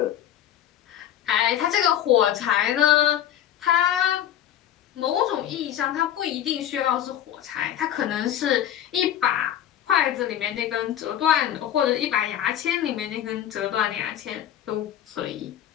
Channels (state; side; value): quieter; right; 11.0 dB